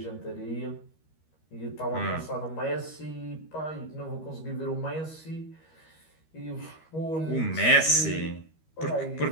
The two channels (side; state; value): right; late; 13 ms